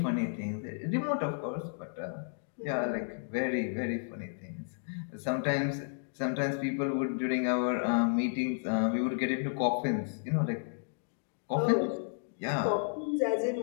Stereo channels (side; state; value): right; silent; digital silence